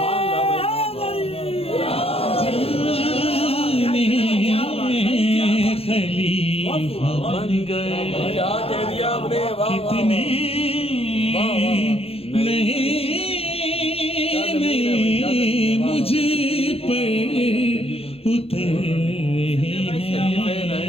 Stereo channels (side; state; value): right; late; 0.28 ms